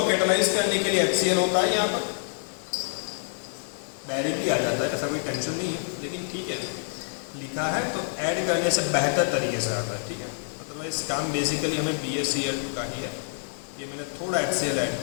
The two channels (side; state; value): right; silent; digital silence